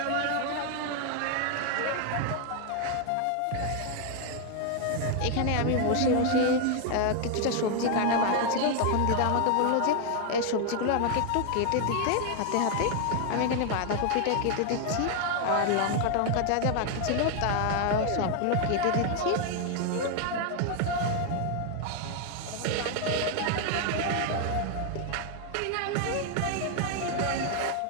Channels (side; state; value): both; different; correlation 0.00